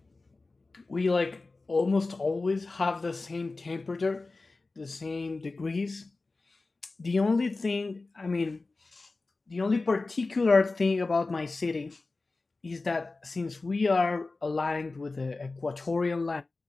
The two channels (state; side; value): quieter; right; 3.5 dB